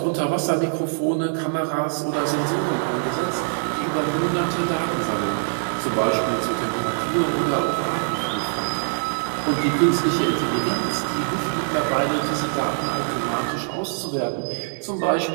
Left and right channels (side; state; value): left; silent; digital silence